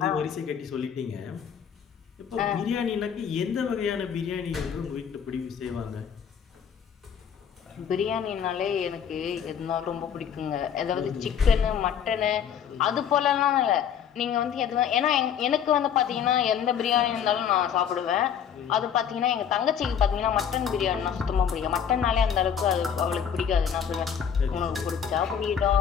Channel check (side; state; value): right; quieter; 8.0 dB